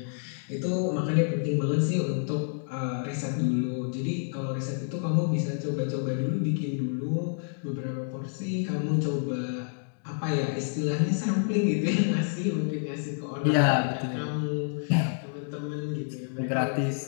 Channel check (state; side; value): silent; right; digital silence